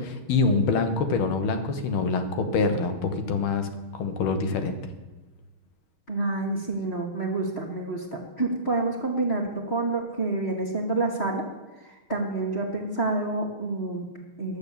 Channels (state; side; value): late; right; 6.4 ms